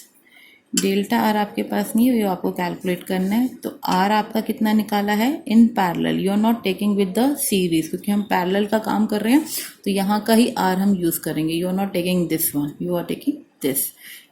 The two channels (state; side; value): identical; both; correlation 1.00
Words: Delta R आपके पास नहीं है, ये आपको कैलकुलेट करना है. तो R आपका कितना निकाला है in parallel. You are not taking with the series, क्योंकि हम पैरेलल का काम कर रहे हैं तो यहाँ का ही R हम यूज़ करेंगे. You are not taking this one, you are taking this.